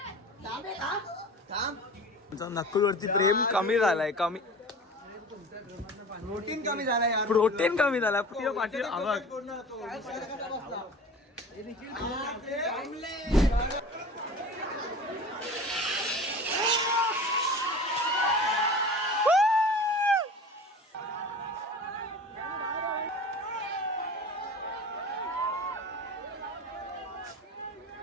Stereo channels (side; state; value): both; normal; correlation 0.38